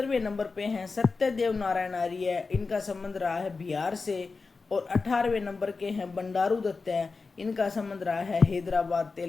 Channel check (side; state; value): right; quieter; 4.3 dB